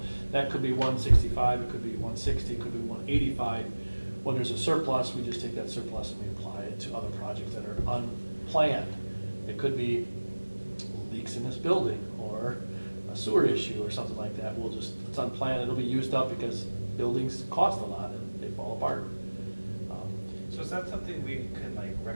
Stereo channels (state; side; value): inverted; both; correlation -1.00